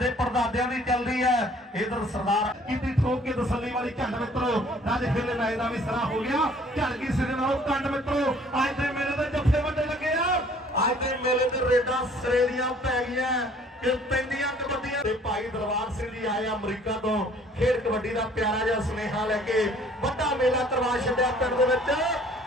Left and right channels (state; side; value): normal; both; correlation 0.56